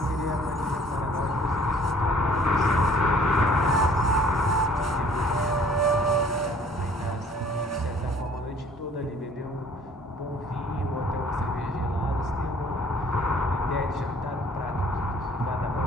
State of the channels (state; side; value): normal; both; correlation 0.56